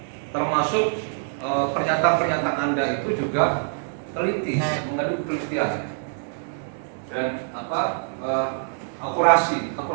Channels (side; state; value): left; silent; digital silence